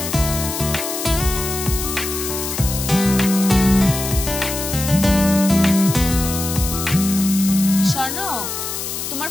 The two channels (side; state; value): left; noise; hiss, 5 dB below the sound